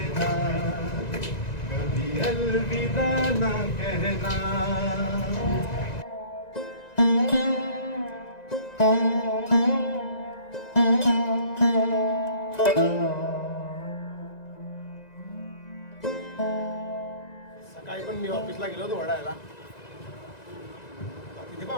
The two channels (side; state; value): right; late; 1.9 ms